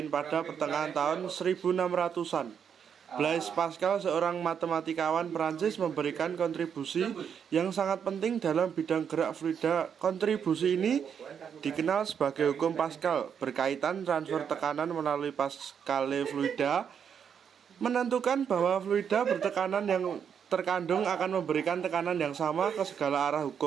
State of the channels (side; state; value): left; quieter; 7.6 dB